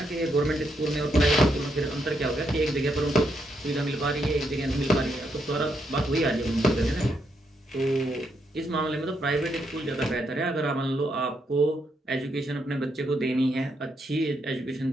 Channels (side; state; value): both; normal; correlation 0.78